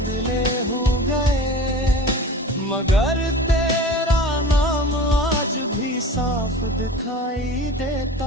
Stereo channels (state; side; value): normal; both; correlation 0.37